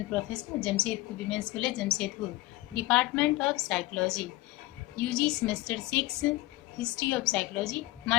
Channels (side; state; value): right; quieter; 19.5 dB